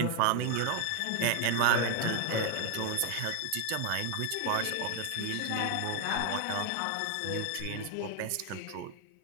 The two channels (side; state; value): both; different; correlation 0.00